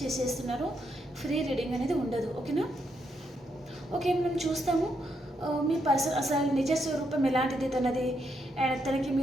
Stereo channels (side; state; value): both; normal; correlation 0.79